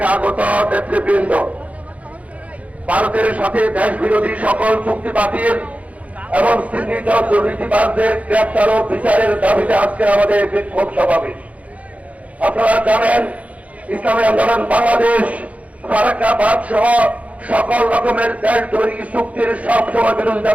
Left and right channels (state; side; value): late; left; 0.067 ms